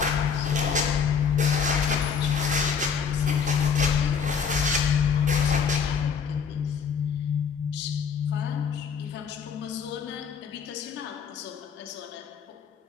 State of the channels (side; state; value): right; quieter; 6.5 dB